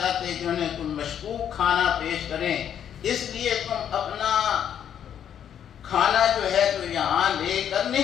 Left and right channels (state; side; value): quieter; right; 9.2 dB